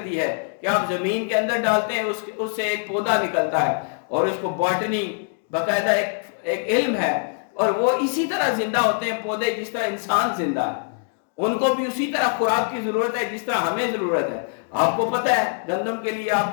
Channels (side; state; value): right; silent; 63 dB below the other